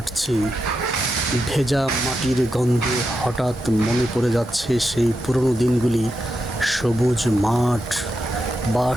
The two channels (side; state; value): both; normal; correlation 0.86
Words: ভেজা মাটির গন্ধে হঠাৎ মনে পড়ে যাচ্ছে সেই পুরনো দিনগুলি। সবুজ মাঠ,